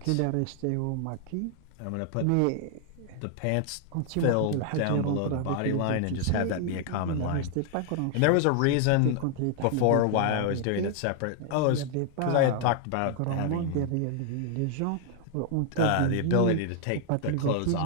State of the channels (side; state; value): both; different; correlation 0.00